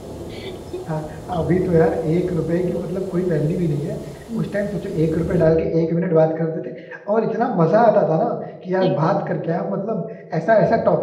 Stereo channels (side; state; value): both; identical; correlation 1.00